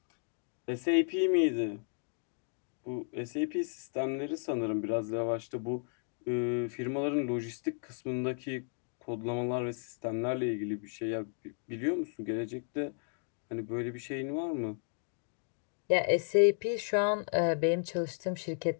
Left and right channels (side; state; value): right; silent; digital silence